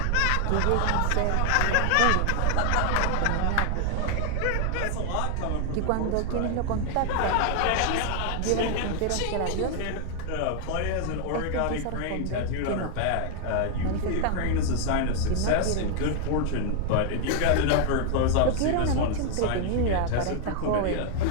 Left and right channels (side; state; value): both; different; correlation 0.00